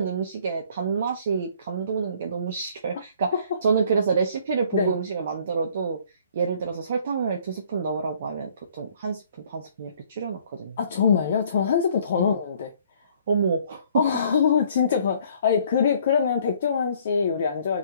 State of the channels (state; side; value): inverted; both; correlation -0.58